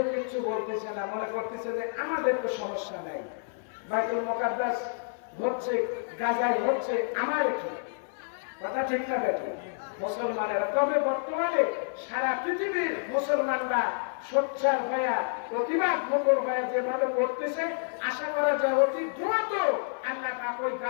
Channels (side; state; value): right; silent; 58 dB below the other